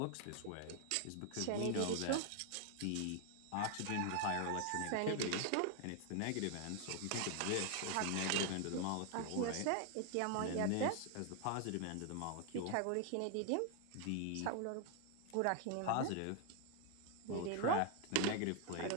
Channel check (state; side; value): different; both; correlation 0.00